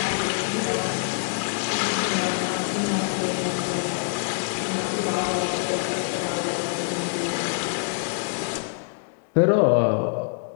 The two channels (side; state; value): right; silent; digital silence